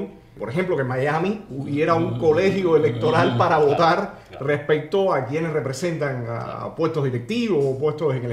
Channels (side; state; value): both; identical; correlation 1.00